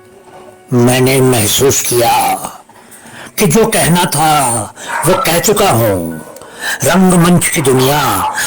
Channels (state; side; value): identical; both; correlation 1.00